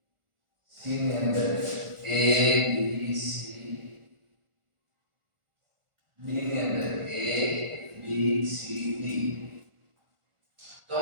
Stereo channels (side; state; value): left; late; 1.4 ms